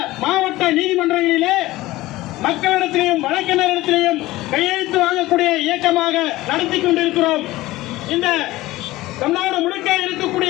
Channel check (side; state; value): right; quieter; 17.8 dB